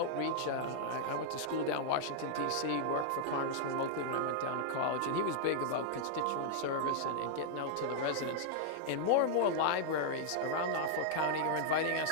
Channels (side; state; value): both; different; correlation -0.01